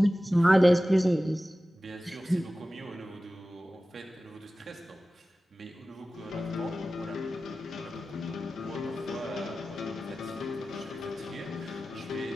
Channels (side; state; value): both; normal; correlation 0.96